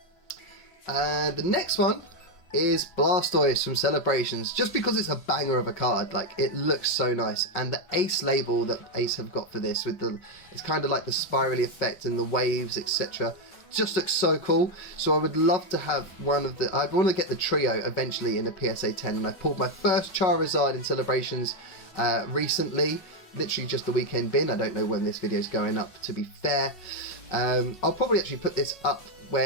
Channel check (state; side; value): late; right; 5.4 ms